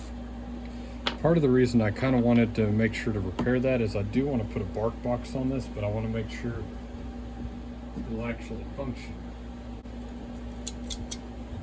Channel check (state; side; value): identical; both; correlation 1.00